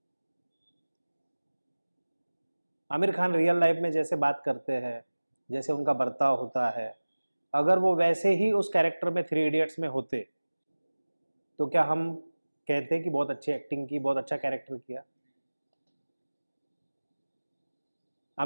आमिर खान रियल लाइफ में जैसे बात करते हैं, जैसे उनका बर्ताव होता है, अगर वो वैसे ही उस कैरेक्टर में 3 इडियट्स में होते, तो क्या हम कहते हैं कि बहुत अच्छी एक्टिंग की, बहुत अच्छा कैरेक्टर किया?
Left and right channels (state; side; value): inverted; both; correlation -1.00